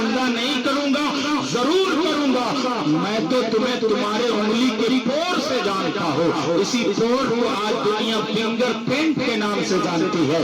نہیں کروں گا؟ ضرور کروں گا. میں تو تمہیں تمہارے انگلی کے پور سے جانتا ہوں. اسی پور کو آج دنیا فنگر پرنٹ کے نام سے جانتی ہے.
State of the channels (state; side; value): identical; both; correlation 1.00